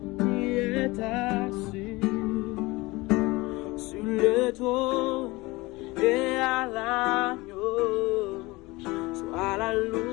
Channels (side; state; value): right; quieter; 21.9 dB